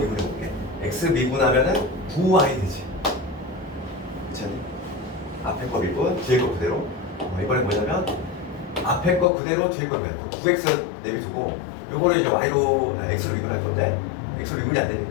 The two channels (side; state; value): right; drops out; at 9.2 s